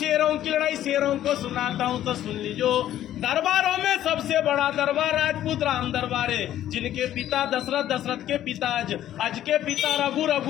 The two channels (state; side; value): quieter; right; 12.2 dB